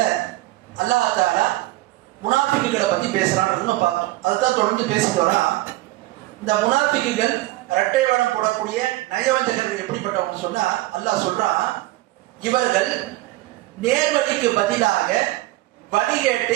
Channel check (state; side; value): quieter; left; 18.3 dB